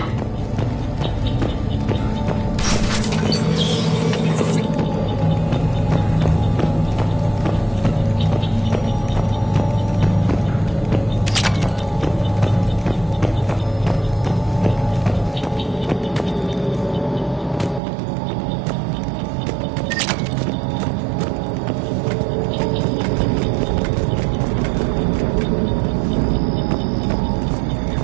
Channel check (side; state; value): left; drops out; at 17.8 s